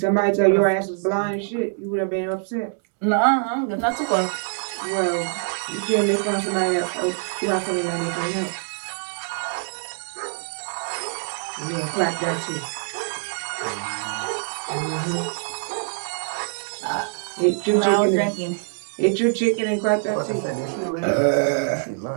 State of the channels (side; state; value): left; silent; digital silence